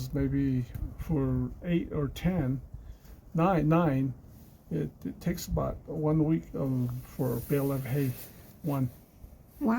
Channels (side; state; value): both; identical; correlation 1.00